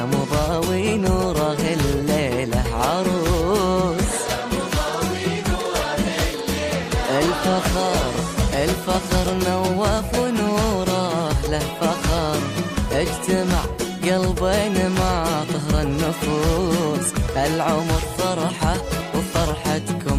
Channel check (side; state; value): both; identical; correlation 1.00